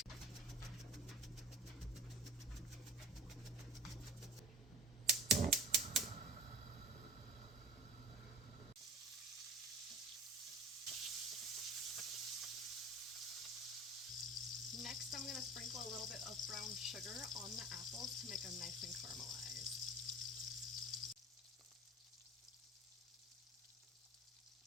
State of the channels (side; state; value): both; normal; correlation 0.39